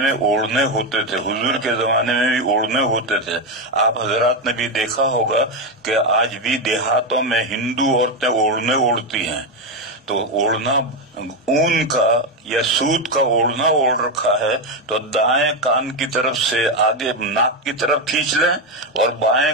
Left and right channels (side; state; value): both; normal; correlation 0.08